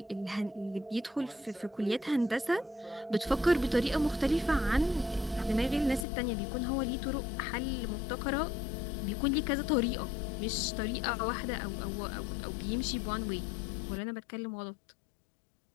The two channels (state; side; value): drops out; right; at 6.1 s